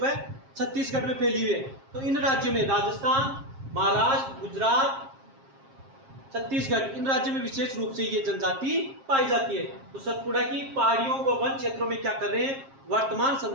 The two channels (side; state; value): left; late; 7.5 ms